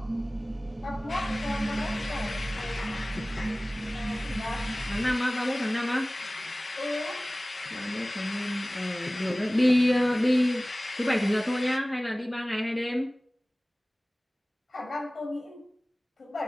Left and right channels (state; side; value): normal; both; correlation 0.98